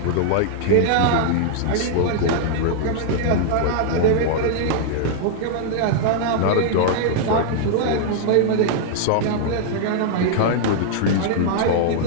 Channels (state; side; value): different; both; correlation -0.01